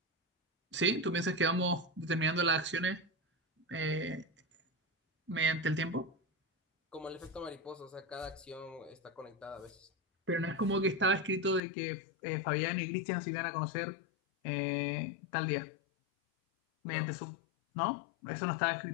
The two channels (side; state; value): right; drops out; at 11.6 s